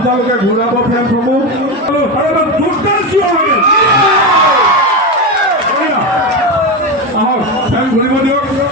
ঘূৰাব ফেনসমূহ আহক ফেন ঘূৰিব দিয়ক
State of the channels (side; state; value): both; normal; correlation 0.16